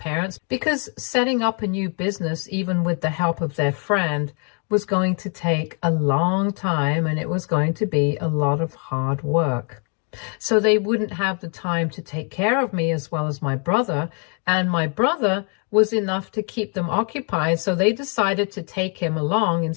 because setting up a new business, even with the help of their friend, was going to take a long time and it was going to be a lot of hard work. So they wouldn't have the time to take care of me as well as my brother, and my brother was enough to keep them occupied, so they decided to take him along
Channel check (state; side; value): quieter; right; 39.6 dB